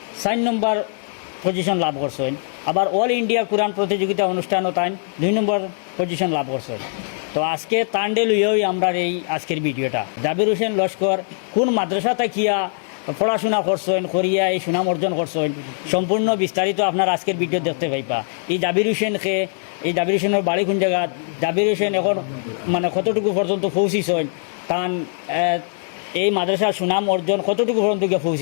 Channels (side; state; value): right; silent; 65 dB below the other